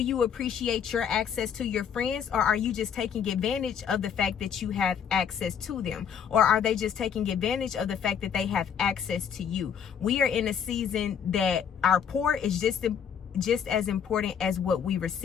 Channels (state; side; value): quieter; right; 7.8 dB